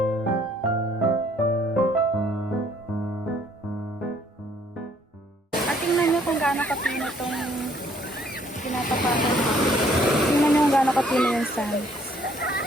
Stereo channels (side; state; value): both; normal; correlation 0.63